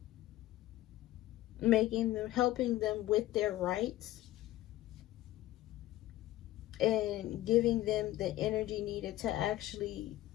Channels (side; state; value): right; quieter; 15.5 dB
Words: Helping them with their rights and giving them the energy needed to actually